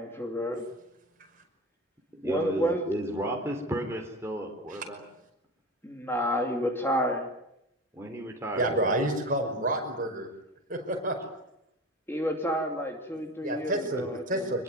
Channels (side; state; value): both; normal; correlation 0.31